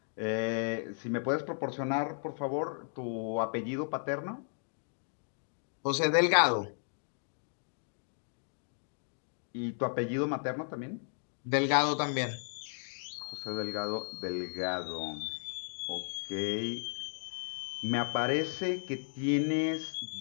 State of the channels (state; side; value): silent; right; digital silence